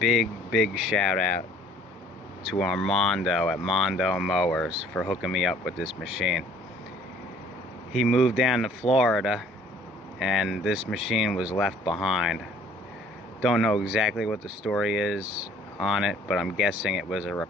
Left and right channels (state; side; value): normal; both; correlation 0.56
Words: shout out to Armando at Mando Mowers for hooking me up with this machine. He moved down to Florida and this machine was left behind. Don't know exactly what the story is on it, but I'm guessing it was a